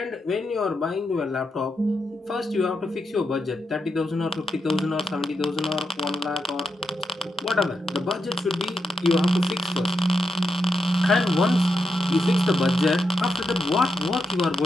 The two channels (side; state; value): both; normal; correlation 0.84